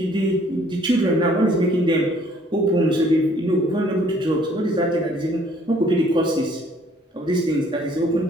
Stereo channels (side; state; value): both; normal; correlation 0.60